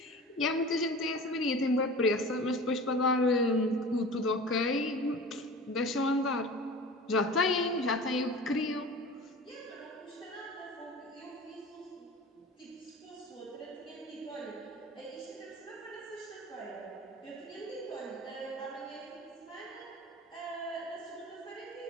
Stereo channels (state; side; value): normal; both; correlation 0.37